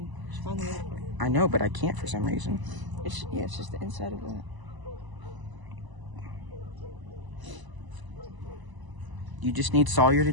I know, but I can't for some reason. It's just the inside of that. You just need Sawyer to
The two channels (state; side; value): late; left; 1.0 ms